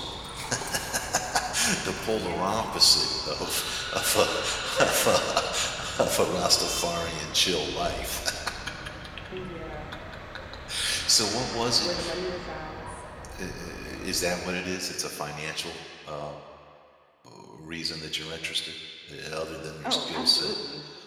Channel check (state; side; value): identical; both; correlation 1.00